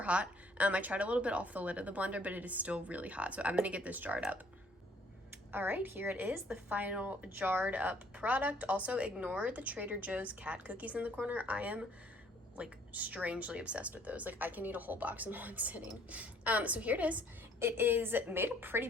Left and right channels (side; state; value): both; normal; correlation 0.61